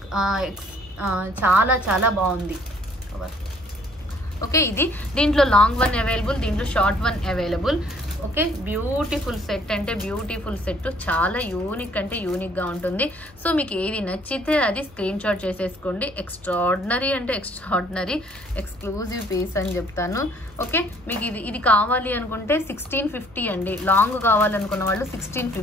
చాలా బాగుంది. ఓకే, దీంట్లో లాంగ్ వన్ అవైలబుల్, దీంట్లో short one available. Okay, beautiful set అంటే బ్యూటిఫుల్ సెట్, చాలా యూనిక్ గా ఉంటుంది. సో మీకు ఏది నచ్చితే అది స్క్రీన్ షాట్ చేసేసుకోండి. ఎక్స్ట్రాడినరీ ఎక్స్క్లూజివ్ పీస్ అని చెప్తాను. ఓకే, మీకు ఇది కావాలి అనుకుంటే 1650 అండి. లాంగ్ కావాలనుకున్న వాళ్ళు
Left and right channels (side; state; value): both; normal; correlation 0.60